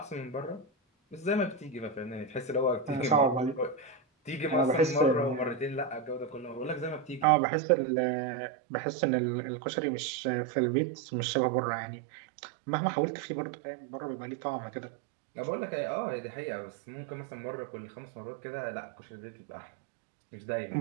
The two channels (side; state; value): left; drops out; at 7.2 s